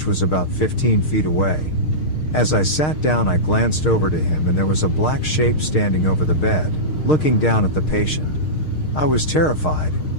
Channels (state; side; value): late; right; 6.5 ms